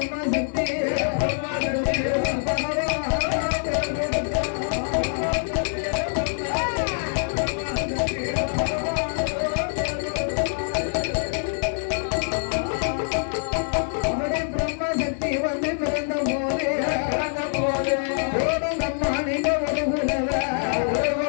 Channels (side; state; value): right; silent; digital silence